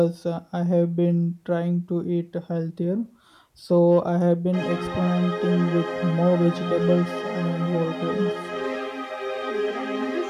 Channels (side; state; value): both; identical; correlation 1.00